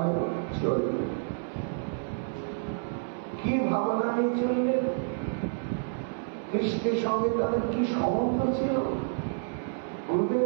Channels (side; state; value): left; silent; 58 dB below the other